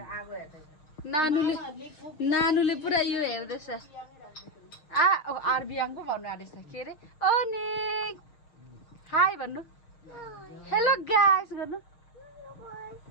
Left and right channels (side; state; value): right; late; 6.5 ms